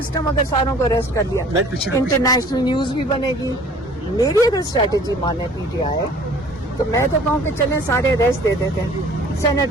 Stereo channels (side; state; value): both; normal; correlation 0.51